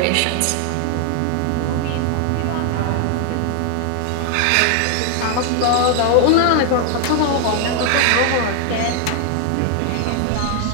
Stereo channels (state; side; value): different; both; correlation 0.00